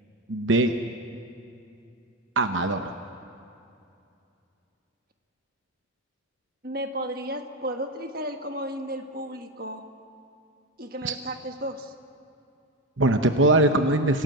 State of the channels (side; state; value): both; normal; correlation 0.15